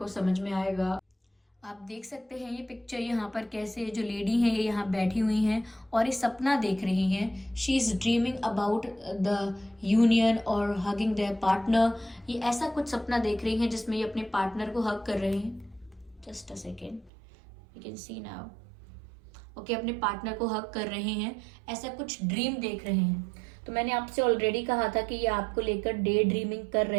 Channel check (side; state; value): left; drops out; at 17.1 s